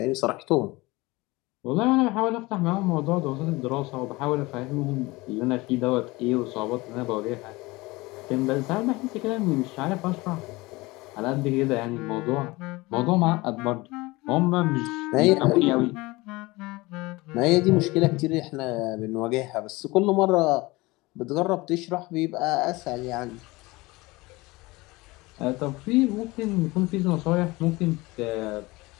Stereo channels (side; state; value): right; quieter; 22.0 dB